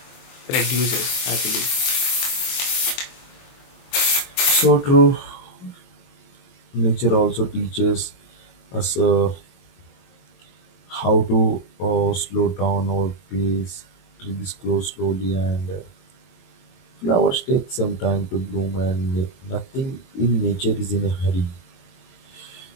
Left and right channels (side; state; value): right; late; 23 ms